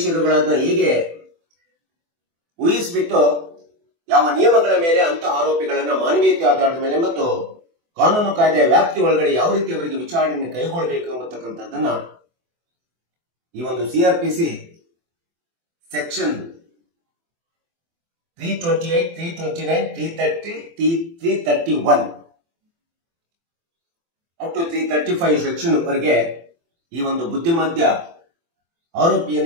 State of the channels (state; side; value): late; left; 24 ms